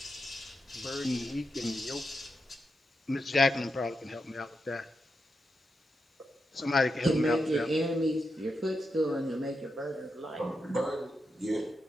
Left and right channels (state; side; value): normal; both; correlation 0.86